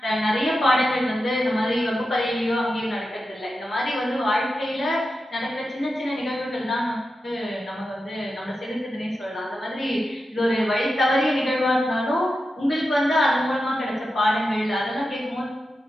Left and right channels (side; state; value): both; normal; correlation 0.90